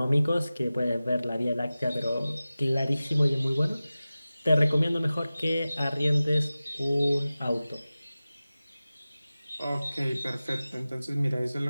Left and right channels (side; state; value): both; inverted; correlation -0.96